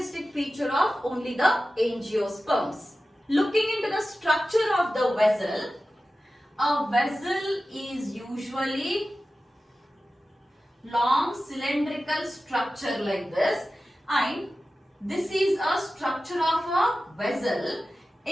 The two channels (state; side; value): normal; both; correlation 0.94